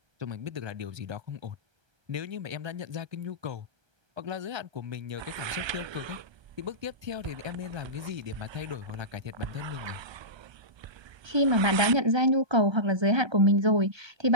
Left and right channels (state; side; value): late; left; 1.3 ms